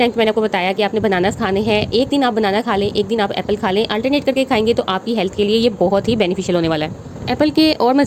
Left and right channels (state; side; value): identical; both; correlation 1.00